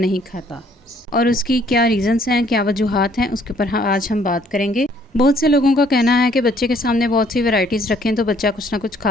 खाता और उसकी क्या रीज़न्स हैं, क्या वजूहात हैं, उसके ऊपर आज हम बात करेंगे। बहुत से लोगों का कहना है कि बच्चे के सामने बहुत सी वैराइटीज़ रखें तो बच्चा कुछ ना कुछ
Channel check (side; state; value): both; normal; correlation 0.63